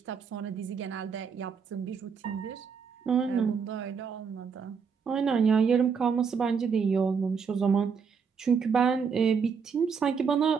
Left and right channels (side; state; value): left; quieter; 6.1 dB